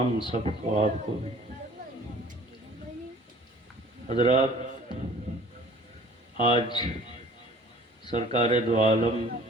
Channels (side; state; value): both; normal; correlation 0.50